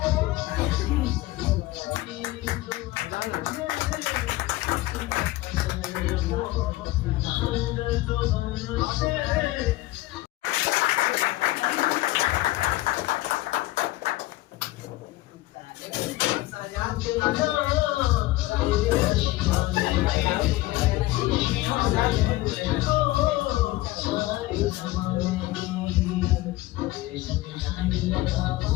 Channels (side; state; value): right; quieter; 18.2 dB